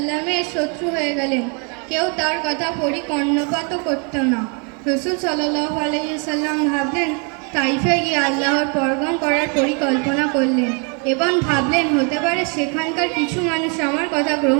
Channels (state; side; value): quieter; left; 36.2 dB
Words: শত্রু হয়ে গেলেন। কেউ তার কথা কর্ণপাতও করত না। রাসূল সাল্লাল্লাহু আলাইহি ওয়াসাল্লাম ভাবলেন, তাইফে গিয়ে আল্লাহর পরগম করার পরিকল্পনা করলেন এবং ভাবলেন হতে পারে সেখানকার কিছু মানুষ আমার কথা